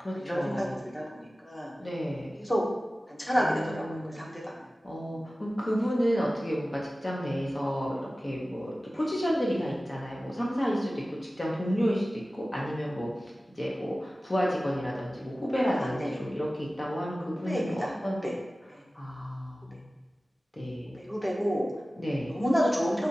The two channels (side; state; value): both; normal; correlation 0.96